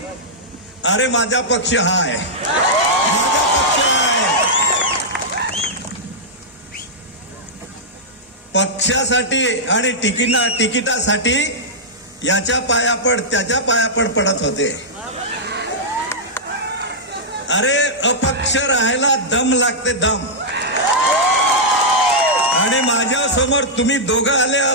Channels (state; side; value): normal; both; correlation -0.09